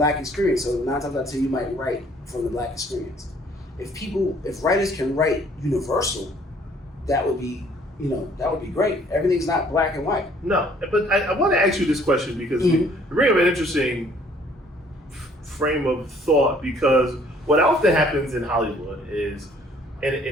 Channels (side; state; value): both; normal; correlation 0.59